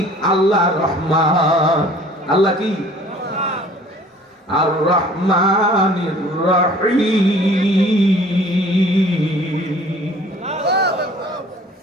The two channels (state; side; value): normal; both; correlation 0.51